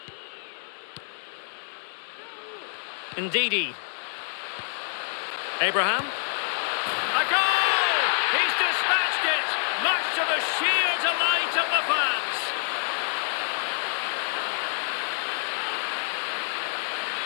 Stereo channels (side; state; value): right; silent; 58 dB below the other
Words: Indeedy. Abraham. A goal! He's dispatched it, much to the sheer delight of the fans.